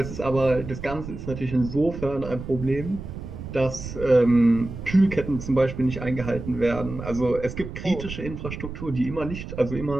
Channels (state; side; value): noise; right; rumble, 9 dB below the sound